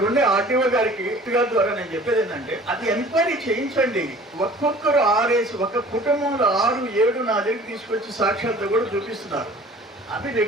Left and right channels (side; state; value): both; normal; correlation 0.47